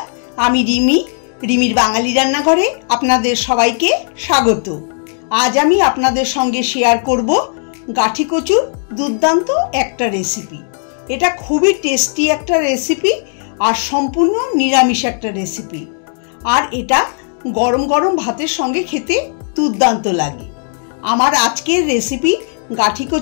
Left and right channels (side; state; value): right; silent; 62 dB below the other